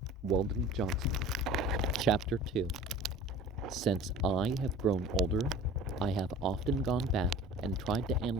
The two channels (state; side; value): normal; both; correlation 0.41